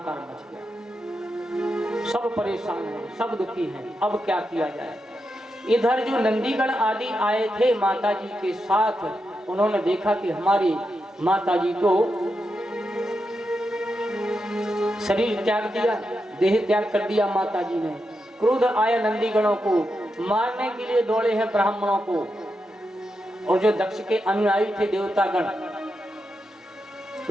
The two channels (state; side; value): normal; both; correlation 0.86